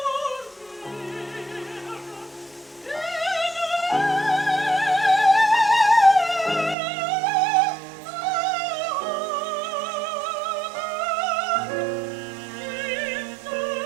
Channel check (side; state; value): left; drops out; at 6.8 s